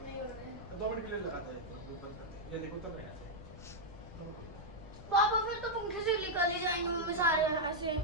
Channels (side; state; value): left; noise; rumble, 14 dB below the sound